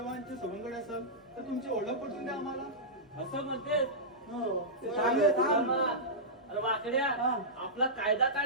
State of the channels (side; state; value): both; normal; correlation -0.14